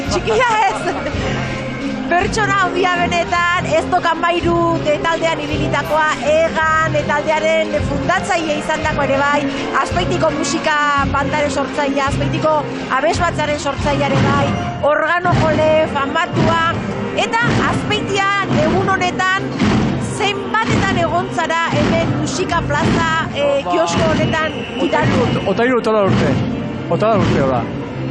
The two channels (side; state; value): both; identical; correlation 1.00